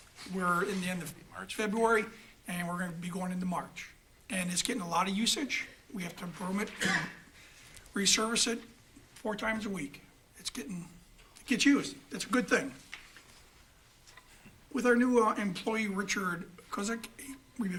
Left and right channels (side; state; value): both; identical; correlation 1.00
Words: We're in the end of February, and we're going to be going into March. And it's getting a lot of usage. We have to broom it resurface it 4 times a week. It gets used. It's a good thing. With our new employee, Richard Kozik, we've